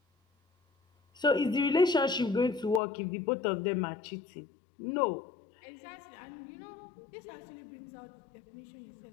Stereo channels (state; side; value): drops out; right; at 2.8 s